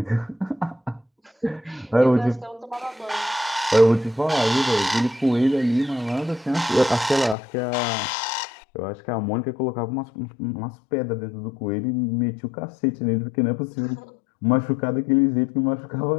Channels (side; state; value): right; drops out; at 7.4 s